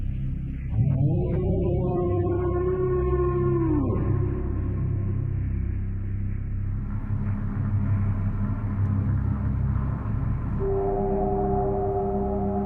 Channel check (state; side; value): identical; both; correlation 1.00